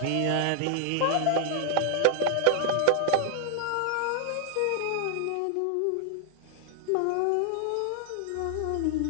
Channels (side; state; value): both; different; correlation 0.00